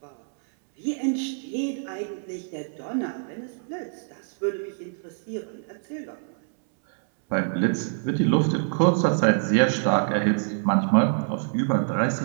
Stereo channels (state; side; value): silent; left; 61 dB below the other